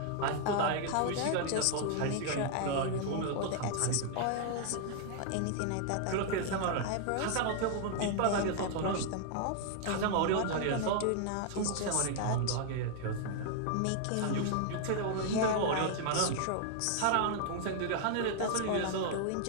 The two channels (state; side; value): different; both; correlation 0.00